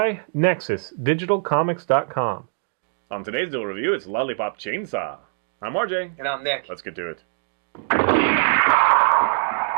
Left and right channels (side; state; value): left; silent; digital silence